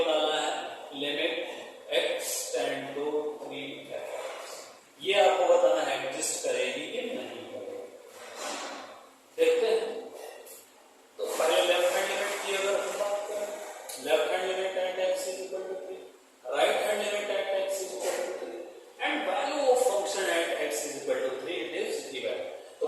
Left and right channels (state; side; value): identical; both; correlation 1.00